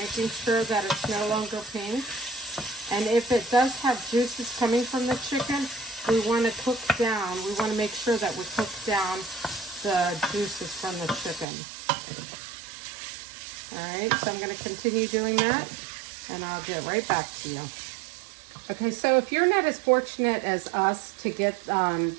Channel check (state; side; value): drops out; left; at 11.5 s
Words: making sure that it's no longer pink. And if it does have juices coming from the chicken, we want to cook down. We want to make sure that we cook down the juices from the chicken. Alright, so I'm going to continue doing that, and I'll get right back to you. Okay, so if you're not as fortunate as us to get the